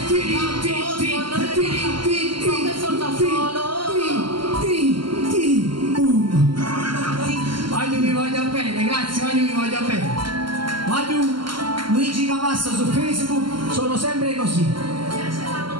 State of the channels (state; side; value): late; left; 0.73 ms